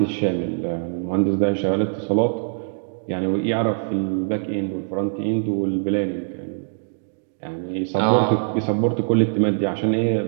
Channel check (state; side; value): silent; left; digital silence